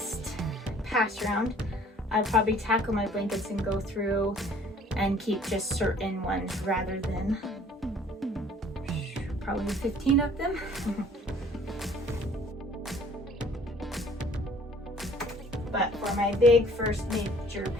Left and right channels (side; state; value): both; normal; correlation 0.54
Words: pass round, I'll probably tackle my blankets and go through and keep just certain ones rather than probably 15 of them. But for my big first major